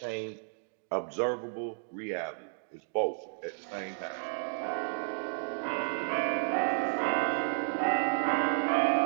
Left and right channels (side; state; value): left; silent; digital silence